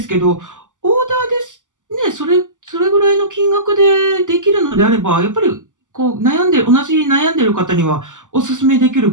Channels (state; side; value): late; left; 0.87 ms